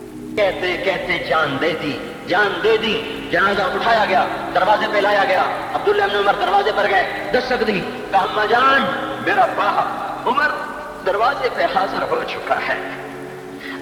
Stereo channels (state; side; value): identical; both; correlation 1.00